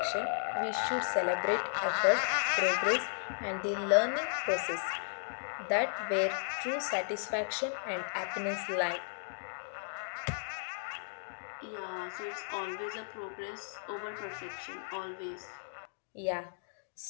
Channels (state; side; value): silent; right; digital silence